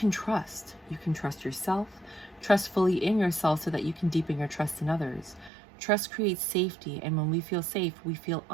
trust. You can trust yourself, trust fully in yourself so that you can deepen your trust in others. Trust creates safety, and when we feel safe, we feel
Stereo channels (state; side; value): drops out; left; at 5.5 s